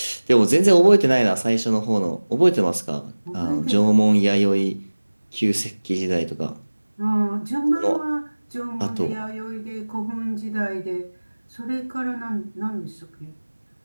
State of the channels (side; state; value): both; inverted; correlation -1.00